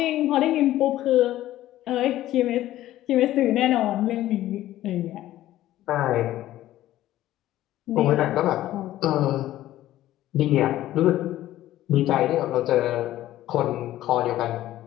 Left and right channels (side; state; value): right; quieter; 14.3 dB